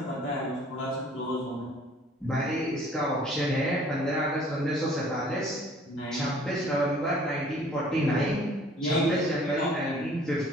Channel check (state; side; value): normal; both; correlation 0.54